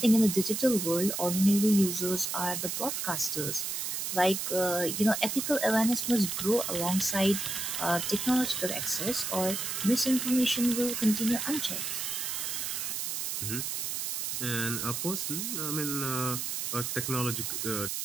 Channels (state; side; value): noise; right; hiss, 2 dB below the sound